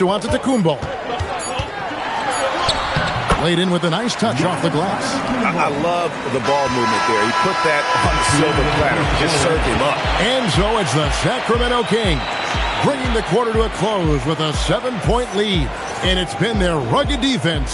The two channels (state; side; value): identical; both; correlation 1.00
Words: Antetokounmpo. Laid in with a nice touch off the glass. I love the ball movement there. He put that on the silver platter. Just served him up. And so it's the Sacramento Kings bringing the quarter to a close with a 7-point lead. And it's been their rugged defense